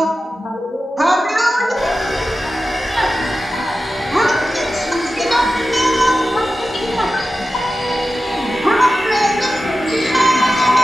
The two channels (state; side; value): normal; both; correlation 0.94